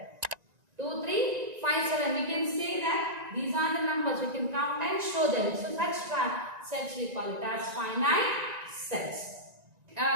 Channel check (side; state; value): left; late; 1.9 ms